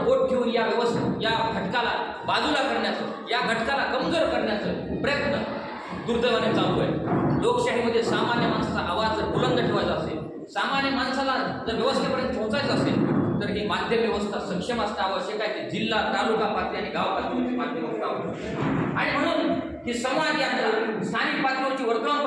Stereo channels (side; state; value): both; identical; correlation 1.00